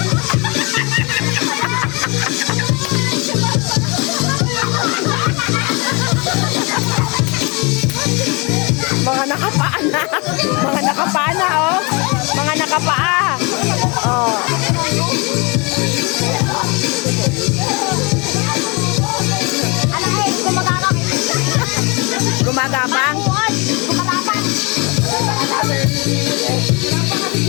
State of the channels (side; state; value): right; quieter; 28.9 dB